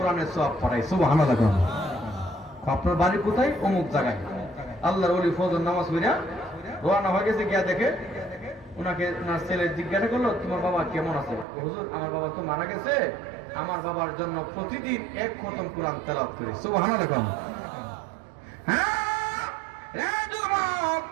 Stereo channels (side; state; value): left; drops out; at 11.5 s